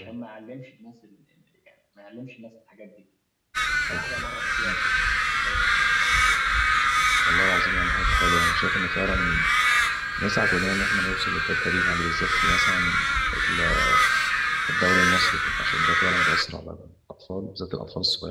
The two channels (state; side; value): identical; both; correlation 1.00